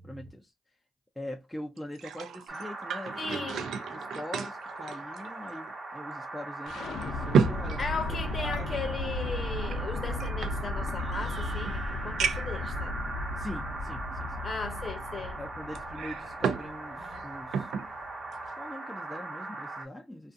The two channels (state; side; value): normal; both; correlation 0.71